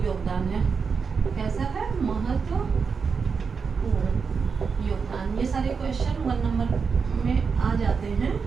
योगदान है। कैसा है? महत्वपूर्ण योगदान। ये सारे क्वेश्चन 1 नंबर में आ जाते हैं।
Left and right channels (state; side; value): quieter; left; 5.5 dB